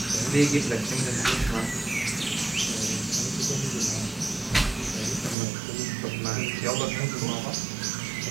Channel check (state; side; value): drops out; left; at 5.4 s